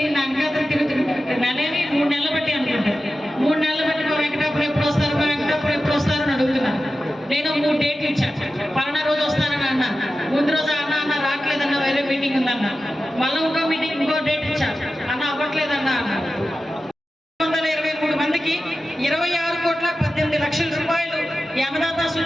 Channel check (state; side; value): normal; both; correlation 0.93